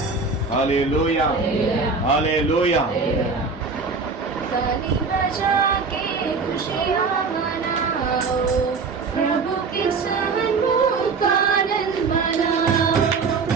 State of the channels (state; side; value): quieter; left; 4.6 dB